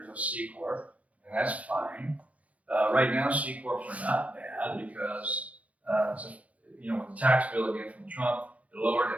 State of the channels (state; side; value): late; left; 0.068 ms